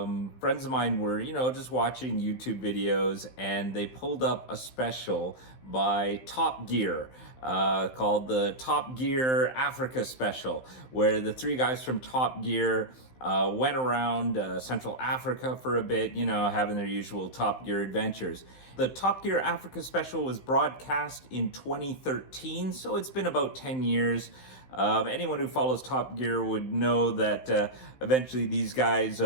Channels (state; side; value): late; right; 15 ms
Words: friends of mine were, just watching YouTube videos, and they pulled up a special by Top Gear called the Top Gear Africa Special, where the three guys from Top Gear went around Central Africa for a bit, having their usual Top Gear adventures. The Top Gear Africa Special was broadcast in 2013, so it's been about 10 years. Anyone who follows Top Gear would know that eventually these guys